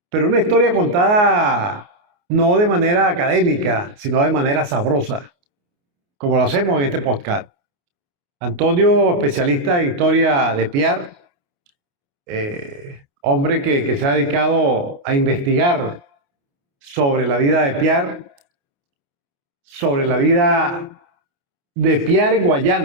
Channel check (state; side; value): late; left; 29 ms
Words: pero una historia contada no de manera académica, sino de manera sabrosa, como lo hacemos en este podcast. Antonio, especialista en historia de Pierre, hombre que se ha dedicado a investigar sobre la vida de Pierre, sobre la vida de Pierre en